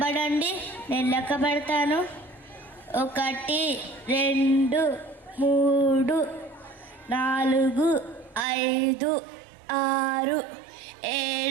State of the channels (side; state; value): left; drops out; at 8.5 s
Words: నేను లెక్క పెడతాను. 1 2 3 4 5 6